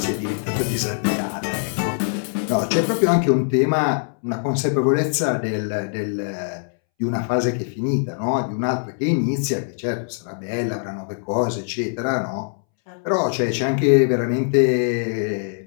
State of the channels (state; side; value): silent; right; 64 dB below the other